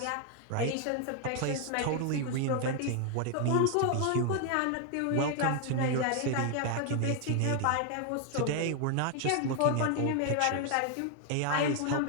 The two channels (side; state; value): both; different; correlation 0.00